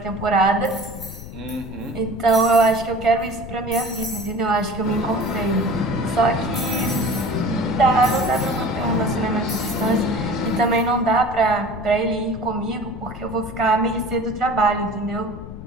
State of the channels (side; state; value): left; noise; rumble, 12 dB below the sound